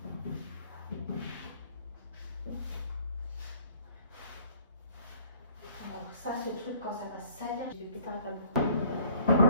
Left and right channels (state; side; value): inverted; both; correlation -0.55